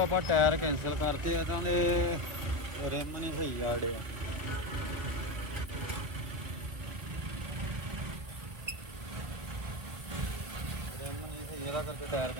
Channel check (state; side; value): late; left; 1.3 ms